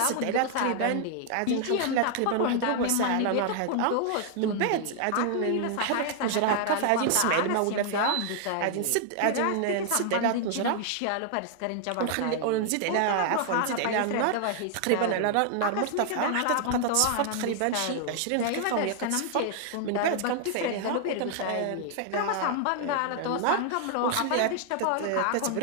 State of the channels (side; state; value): both; different; correlation 0.00